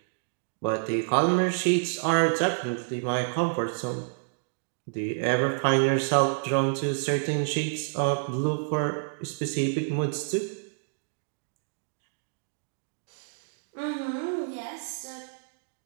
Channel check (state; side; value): silent; left; digital silence